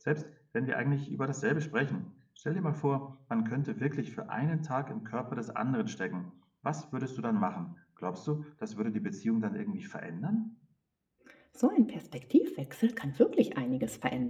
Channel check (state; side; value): identical; both; correlation 1.00